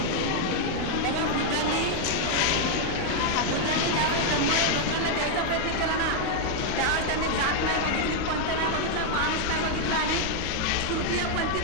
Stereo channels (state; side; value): different; both; correlation 0.00